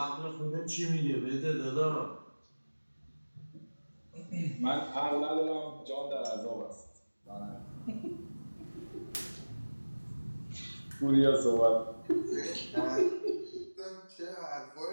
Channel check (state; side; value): inverted; both; correlation -1.00